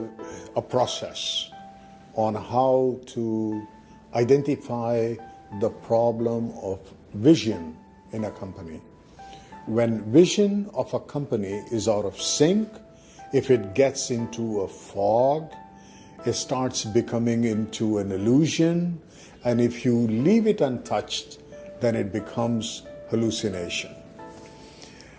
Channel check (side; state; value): both; identical; correlation 1.00